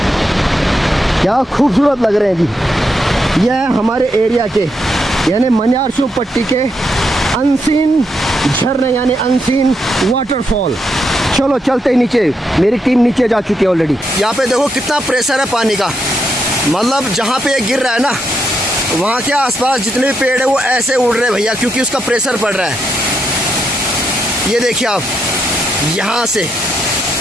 क्या खूबसूरत लग रहे हैं जी। यह है हमारे एरिया के यानी मनियारशु पट्टी के अनसीन झरने यानी अनसीन वाटरफॉल। चलो चलते ही नीचे, मेरी टीम नीचे जा चुकी है ऑलरेडी। यहाँ पे देखो कितना प्रेशर है पानी का, मतलब जहाँ पे ये गिर रहा है ना, वहाँ के आसपास जितने भी पेड़ है वो ऐसे उड़ रहे हैं भैया, क्योंकि उसका प्रेशर पड़ रहा है। ये देखिए आप, यहाँ से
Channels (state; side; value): normal; both; correlation 0.80